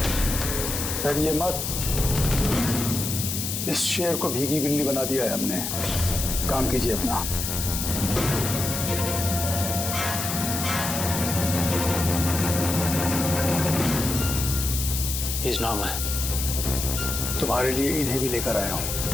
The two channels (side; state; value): left; noise; hiss, 3 dB below the sound